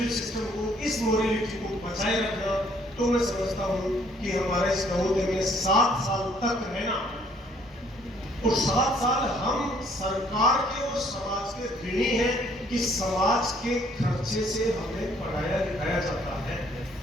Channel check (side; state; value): both; normal; correlation 0.63